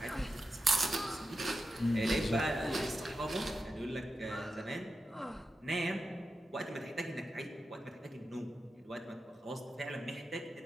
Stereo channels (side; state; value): both; normal; correlation 0.90